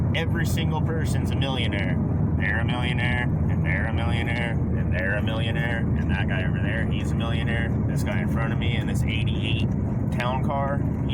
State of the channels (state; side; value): identical; both; correlation 1.00